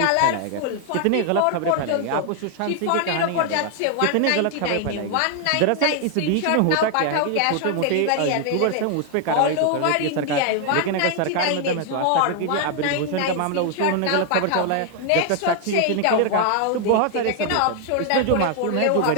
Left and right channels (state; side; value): different; both; correlation 0.00